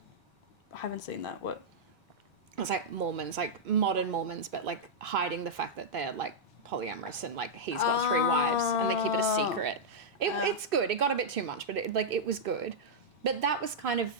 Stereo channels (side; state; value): both; normal; correlation -0.07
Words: I haven't seen that. What? It was like Mormons, like modern Mormons, but like hiding the fact that they're like polyamorous and like he's got 3 wives and they keep it a secret. It's good. It got a bit too much, but it was good. But that was kind of